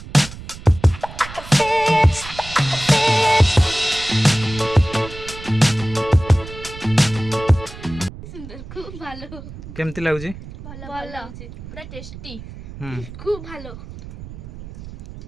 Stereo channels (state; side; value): noise; right; rumble, 14 dB below the sound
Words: केमती लागुची ভালো ভালো পুরা টেস্টি খুব ভালো